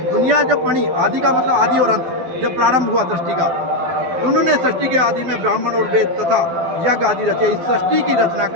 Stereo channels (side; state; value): left; late; 12 ms